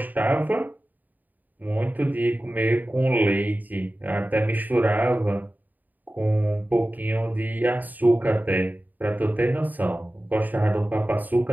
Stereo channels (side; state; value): left; late; 0.084 ms